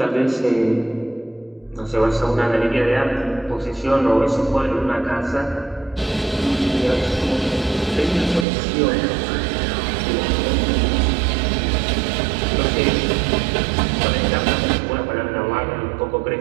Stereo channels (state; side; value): drops out; left; at 8.5 s